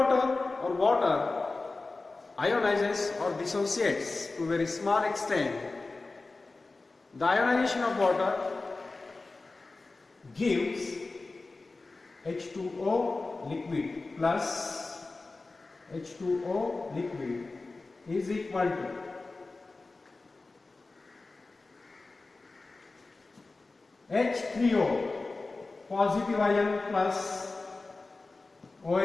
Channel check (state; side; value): quieter; right; 3.5 dB